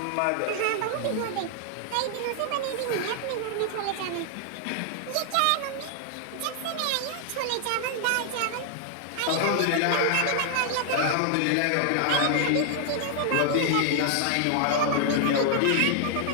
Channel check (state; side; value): different; both; correlation 0.00